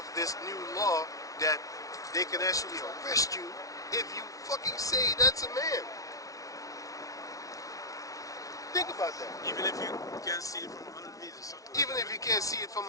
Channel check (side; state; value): right; late; 0.17 ms